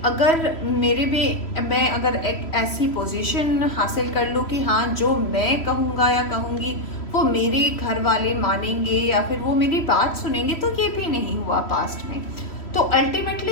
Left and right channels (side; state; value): right; late; 3.1 ms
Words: अगर मैं अगर एक ऐसी पोजीशन हासिल कर लूँ कि हाँ जो मैं कहूँगा या कहूँगी वो मेरे घर वाले मानेंगे या फिर वो मेरी बात सुनेंगे, तो ये भी नहीं हुआ पास्ट में। तो